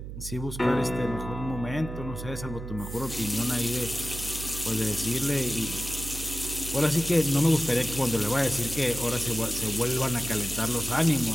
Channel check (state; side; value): noise; right; hum, 9 dB below the sound